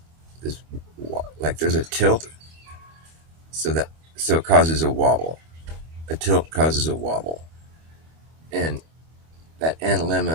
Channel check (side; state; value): left; late; 25 ms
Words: like there's a tilt, so it causes a wobble. A tilt causes a wobble, and that